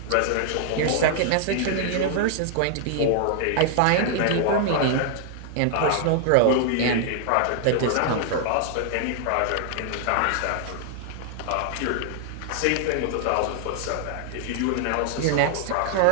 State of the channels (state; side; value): different; both; correlation -0.01